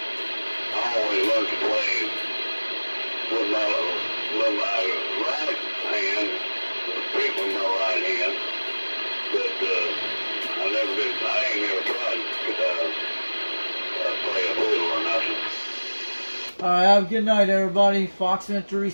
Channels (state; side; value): inverted; both; correlation -1.00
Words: always learned to play with my right hand, pick with my right hand, but I ain't never tried to play a fiddle or nothing. Alright, have a good night, everybody.